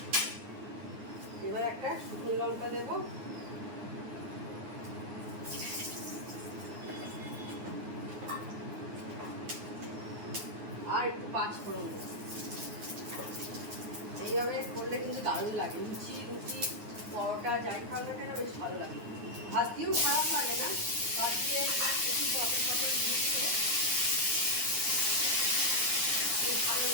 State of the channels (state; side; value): late; left; 9.5 ms